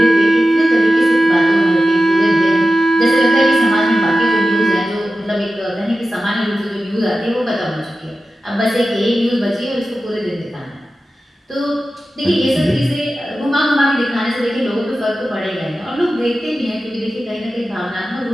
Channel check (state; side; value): normal; both; correlation 0.94